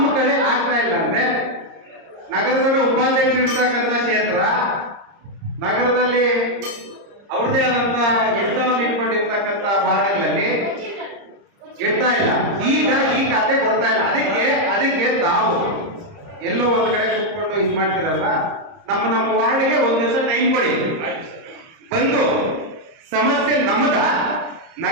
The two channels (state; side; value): late; left; 30 ms